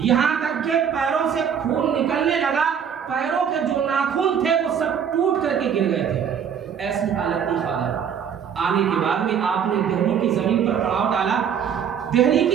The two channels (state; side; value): quieter; left; 7.8 dB